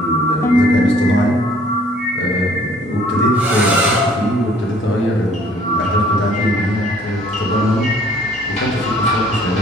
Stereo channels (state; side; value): normal; both; correlation 0.57